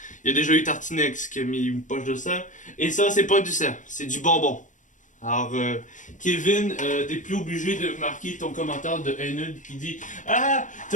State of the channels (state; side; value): late; right; 0.37 ms